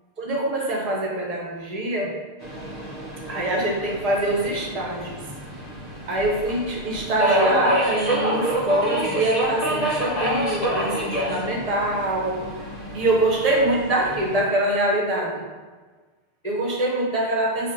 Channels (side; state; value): right; late; 6.6 ms